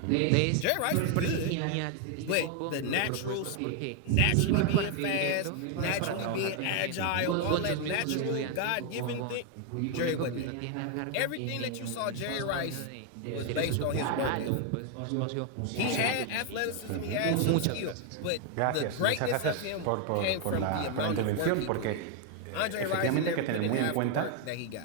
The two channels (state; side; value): different; both; correlation 0.01